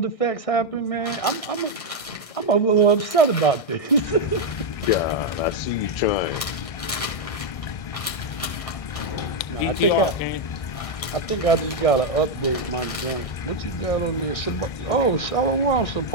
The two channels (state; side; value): late; right; 1.6 ms